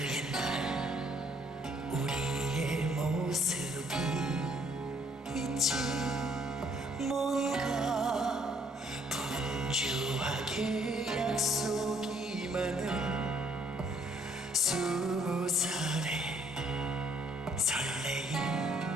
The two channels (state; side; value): normal; both; correlation 0.66